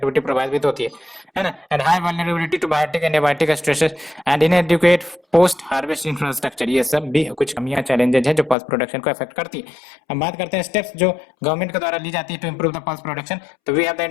प्रभावित होती है ना। And high vulnerability to biotic and abiotic stresses and inadequate post harvest infrastructure, ये सब भी कुछ कमियां चैलेंजेस है जो पल्स प्रोडक्शन को अफेक्ट करती है। हम बात करते हैं स्टेप्स जो गवर्नमेंट के द्वारा ली जाती है to improve the pulse production. तो we have the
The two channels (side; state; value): right; drops out; at 8.6 s